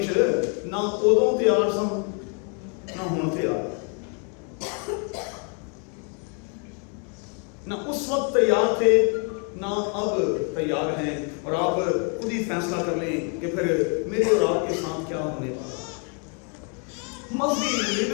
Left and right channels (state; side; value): quieter; right; 39.4 dB